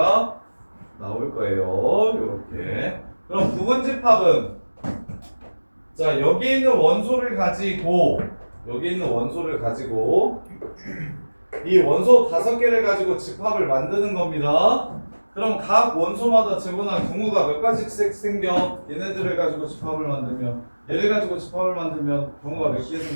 나올 거예요. 이렇게. 그럼 부분집합은 자 여기 있는 원소를 가지고 이 원소 5개를 가지고 집합을 만드는 겁니다. 그럼 각 원소마다 재고나 경우가 몇 가지씩 생겨? 얘네들을 가지고 집합을 만들면 얘를 가지고 집합을 만들면 경우가 몇 개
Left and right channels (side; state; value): both; inverted; correlation -1.00